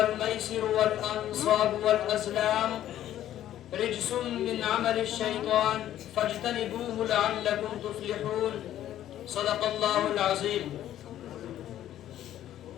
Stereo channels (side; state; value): right; quieter; 12.2 dB